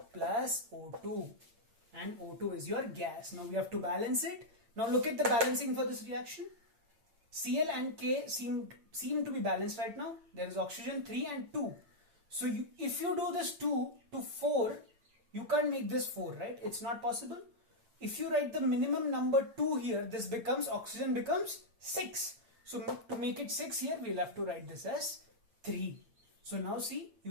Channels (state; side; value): late; left; 8.9 ms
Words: plus O2, and O2 is your gas. Now we have to balance it. Now look at the balancing for this reaction. Cl and K seem to be balanced right now. There is oxygen 3 and 2. So if you do this 2 to 4, you can't make this 4, right? It's not possible. If you write the minimum number 2 here, this becomes, oxygen becomes 6. So to make it 6 here, we'll have to write this as 3. So now see,